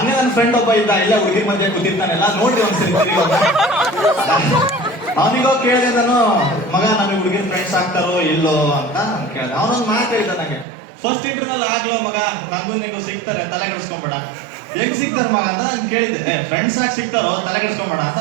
ನನ್ನ ಫ್ರೆಂಡ್ ಒಬ್ಬ ಇದ್ದ, ಇಲ್ಲ ಹುಡುಗಿ ಮಧ್ಯೆ ಕೂತಿರ್ತಾನೆಲ್ಲ, ನೋಡ್ರಿ ಒಂದ್ಸರಿ ಅವನಿಗೋ ಕೇಳಿದೆ ನಾನು, ಮಗ ನಮಗೆ ಹುಡುಗಿನ ಫ್ರೆಂಡ್ಸ್ ಆಗ್ತಾರೋ ಇಲ್ಲೋ ಅಂತ ಕೇಳಿದೆ. ಅವನೊಂದು ಮಾತು ಹೇಳಿದ ನನಗೆ, ಫಸ್ಟ್ ಇಂಟರ್ನಲ್ ಆಗ್ಲೋ ಮಗ, ನಂಗೂ ನಿಂಗೂ ಸಿಗ್ತಾರೆ, ತಲೆ ಕೆಡಿಸ್ಕೊಂಬೇಡ. ಹೆಂಗ್ ಸಿಗ್ತಾರ ಮಗ ಅಂತ ನಾನು ಕೇಳಿದ್ದೆ. ಫ್ರೆಂಡ್ಸ್ ಆಗಿ ಸಿಗ್ತಾರೋ, ತಲೆ ಕೆಡಿಸ್ಕೊಂಬೇಡ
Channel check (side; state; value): left; drops out; at 10.7 s